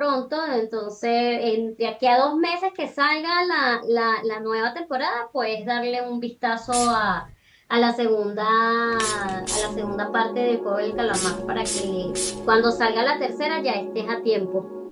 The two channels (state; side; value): identical; both; correlation 1.00